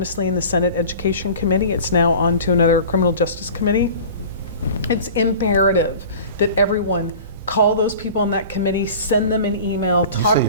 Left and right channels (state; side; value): inverted; both; correlation -0.40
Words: in the Senate Education Committee. It's now on to another Criminal Justice Committee. It's imperative that everyone call those people on that committee, send them an email, talk